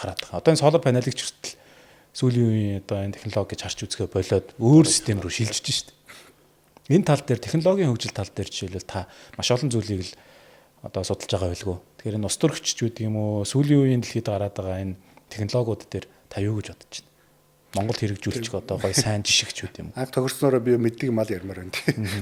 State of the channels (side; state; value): both; identical; correlation 1.00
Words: байгаа. Одоо энэ солар панелыг ч хүртэл сүүлийн үеийн одоо энэ технологи гэж харж үзэхэ болоод өөр систем рүү шилжиж шít. Энэ тал дээр технологийн хөгжил тал дээр жишээлбэл та маш олон зүйлийг л одоо судалж байгаа байлгүй. Тэгэхээр энэ ус төрөгч гэдэг юм уу сүүлийн үеийн дэлхийд гараад байгаа энэ технологиуд дээр та юу гэж бодож байна? Монгол хэрэгжүүлчих одоо гоё сайн жишгч үү юм. Анх тохирснороо би мэддэг мал ярмаар байна тийм.